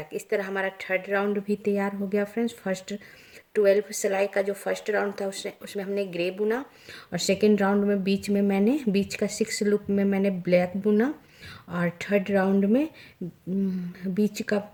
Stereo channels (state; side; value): identical; both; correlation 1.00